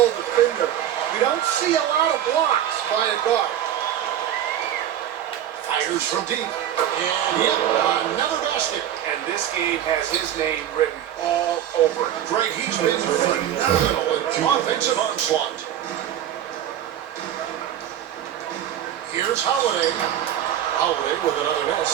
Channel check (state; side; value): quieter; left; 10.9 dB